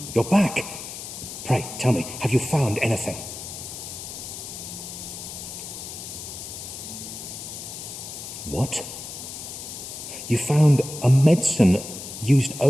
You're back. Pray, tell me, have you found anything? What? You found a medicine used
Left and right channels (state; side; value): noise; left; hiss, 10 dB below the sound